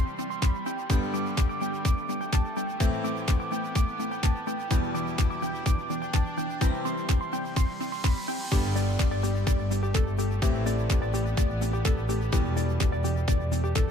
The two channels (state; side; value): normal; both; correlation 0.66